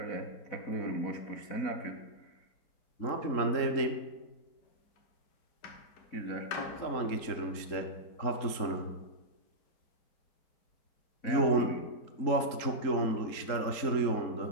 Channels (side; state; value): right; late; 3.8 ms